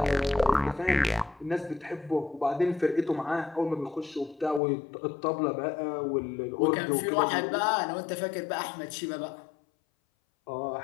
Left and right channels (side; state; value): right; drops out; at 4.6 s